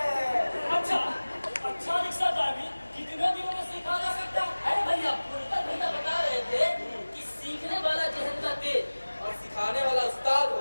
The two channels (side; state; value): both; inverted; correlation -1.00